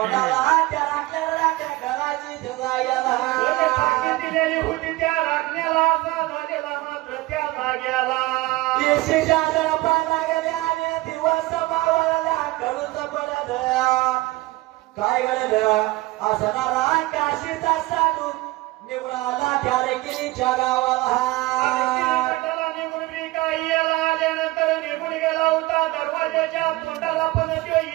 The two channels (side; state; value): left; quieter; 19.7 dB